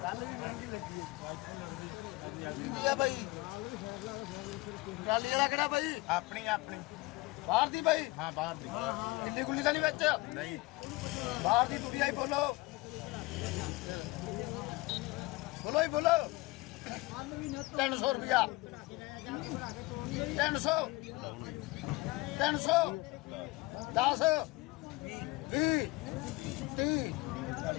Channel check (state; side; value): quieter; right; 22.0 dB